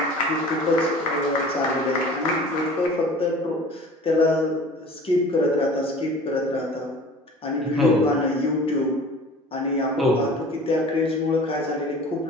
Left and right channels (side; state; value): both; normal; correlation 0.43